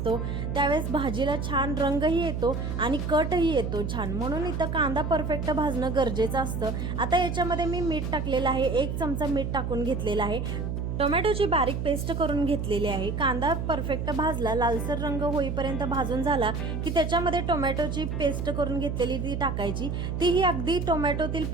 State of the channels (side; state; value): right; noise; hum, 3 dB below the sound